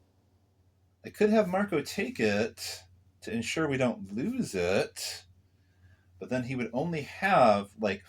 I could have Marko take it to ensure we don't lose it, but then he would only have like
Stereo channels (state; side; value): identical; both; correlation 1.00